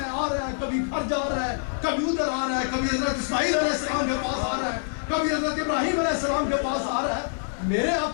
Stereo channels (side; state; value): right; silent; 56 dB below the other